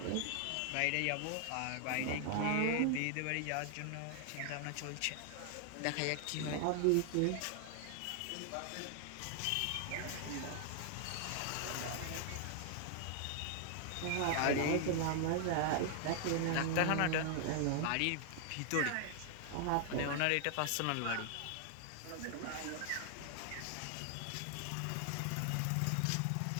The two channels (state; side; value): different; both; correlation 0.00